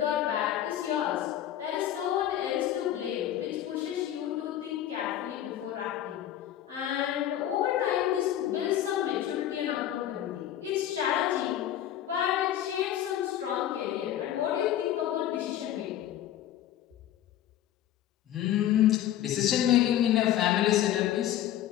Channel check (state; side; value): quieter; right; 11.8 dB